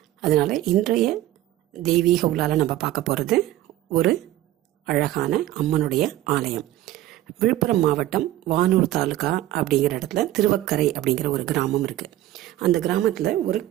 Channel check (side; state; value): left; quieter; 14.5 dB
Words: அதனால் இன்றைய தெய்வீக உலால் நம்ம பார்க்க போகிறது ஒரு அழகான அம்மனுடைய ஆலயம். விழுப்புரம் மாவட்டம் வானூர் தாலுகா அப்படிங்கிற இடத்துல திருவக்கரை அப்படிங்கிற ஒரு கிராமம் இருக்குது. அந்த கிராமத்தில் ஒரு